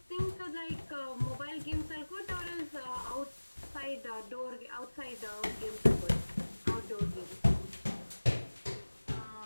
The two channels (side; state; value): both; inverted; correlation -1.00